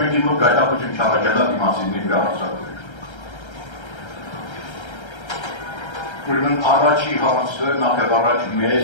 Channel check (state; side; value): late; right; 1.3 ms